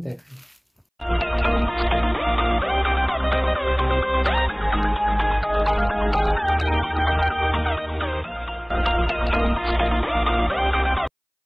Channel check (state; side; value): identical; both; correlation 1.00